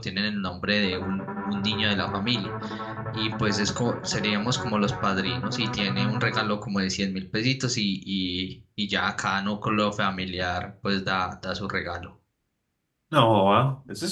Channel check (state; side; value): identical; both; correlation 1.00